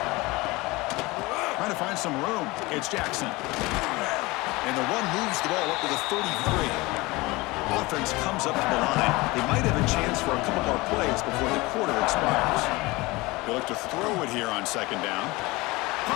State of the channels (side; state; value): right; quieter; 22.3 dB